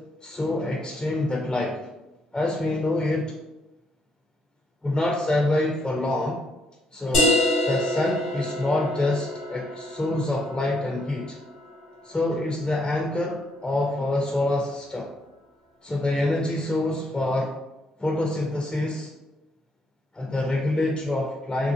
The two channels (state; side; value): normal; both; correlation 0.74